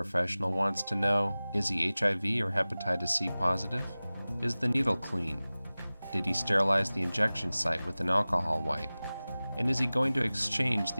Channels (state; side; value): inverted; both; correlation -0.98